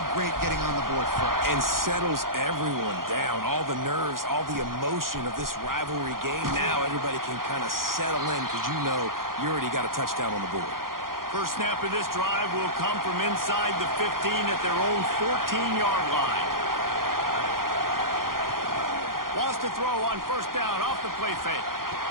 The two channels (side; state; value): left; late; 0.91 ms